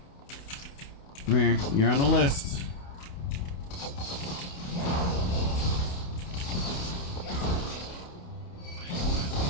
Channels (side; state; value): right; late; 28 ms